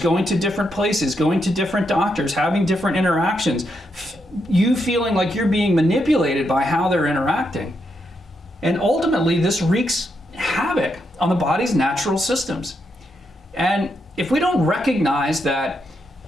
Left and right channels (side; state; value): both; normal; correlation 0.81